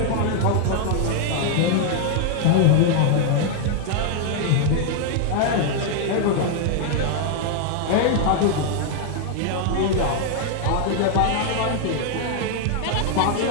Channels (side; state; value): both; different; correlation 0.00